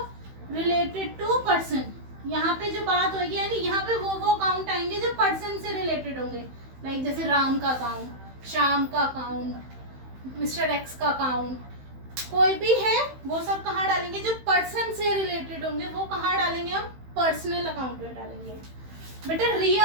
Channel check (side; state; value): left; late; 15 ms